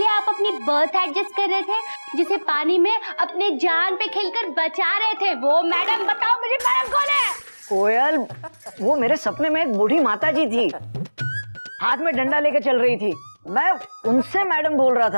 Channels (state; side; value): inverted; both; correlation -1.00